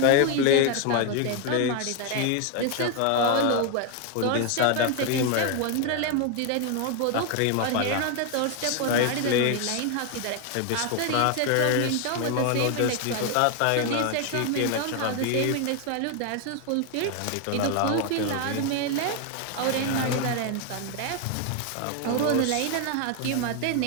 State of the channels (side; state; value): both; different; correlation 0.01